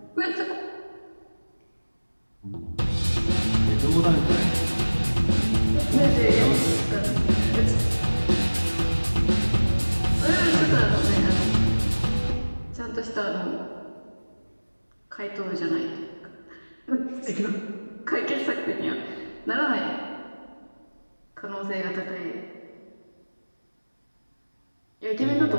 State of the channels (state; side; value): inverted; both; correlation -1.00